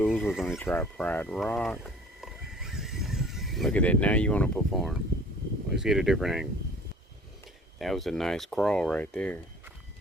we're going to try Pride Rock. Look at that, now you want to perform. Let's get a different angle. That was a nice crawl right there.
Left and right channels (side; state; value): both; normal; correlation 0.49